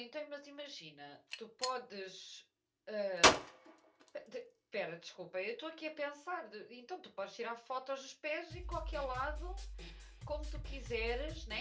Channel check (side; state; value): both; identical; correlation 1.00